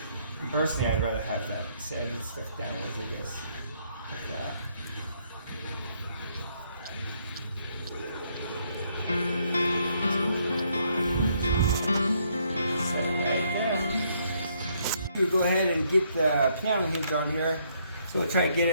And personally, I'd rather have that sanded stuff downwards, I guess. Like that. We'll go ahead and get the piano hinge on here. So we'll try to get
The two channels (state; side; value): inverted; both; correlation -0.71